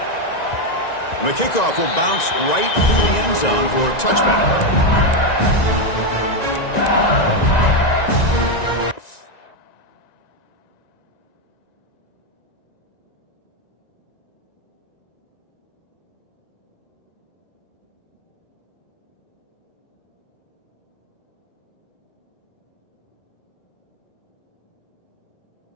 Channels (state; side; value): late; right; 1.9 ms